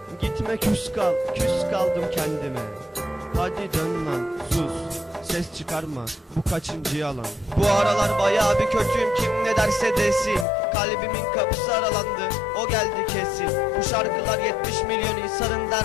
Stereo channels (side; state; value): right; drops out; at 10.5 s